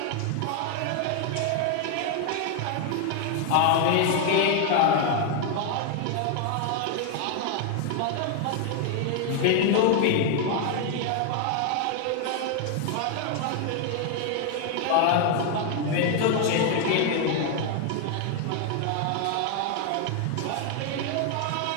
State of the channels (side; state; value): both; different; correlation 0.01